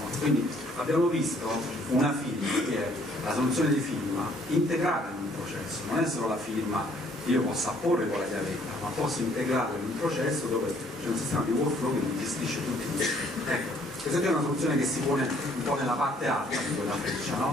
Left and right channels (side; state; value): both; normal; correlation 0.62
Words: Quindi abbiamo visto una firma che è la soluzione di firma integrata in un processo, non è solo la firma che io possa apporre con la chiavetta, ma posso integrarla in un processo dove c'è un sistema di workflow che mi gestisce tutti i tempi. Ecco, questa è una soluzione che si pone un po' nella parte alta di quella freccia,